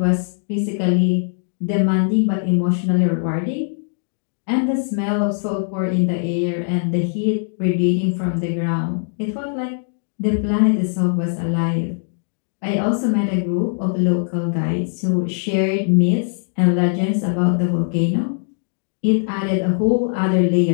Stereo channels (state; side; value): silent; right; 65 dB below the other